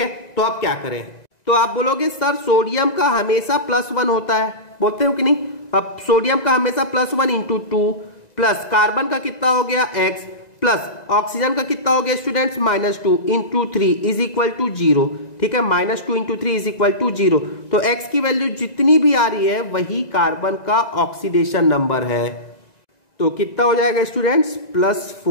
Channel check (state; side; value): late; right; 1.9 ms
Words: तो आप क्या करें, तो आप बोलोगे सर सोडियम का हमेशा +1 होता है, बोलते हो कि नहीं। अब सोडियम का हमेशा +1 × 2 प्लस कार्बन का कितना हो गया X प्लस ऑक्सीजन का कितना हो गया स्टूडेंट्स, -2 × 3 इज इक्वल टू 0, ठीक है। -2 × 3 इज इक्वल टू 0। तो X की वैल्यू जितनी भी आ रही है वही कार्बन का ऑक्सीडेशन नंबर है। तो कितना हो जाएगा स्टूडेंट्स,